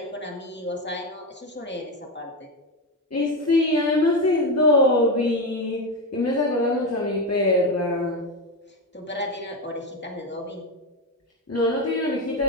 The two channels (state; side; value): normal; both; correlation 0.14